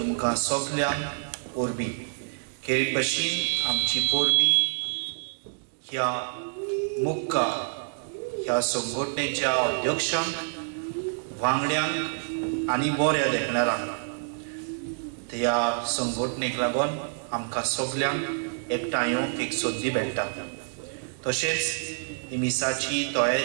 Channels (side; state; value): left; silent; 59 dB below the other